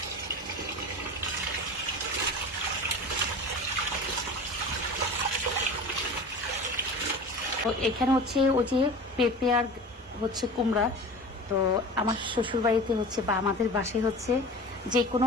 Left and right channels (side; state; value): both; normal; correlation 0.35